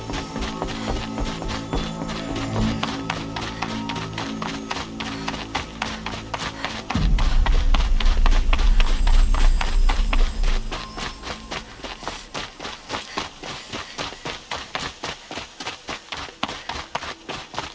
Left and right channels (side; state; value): both; identical; correlation 1.00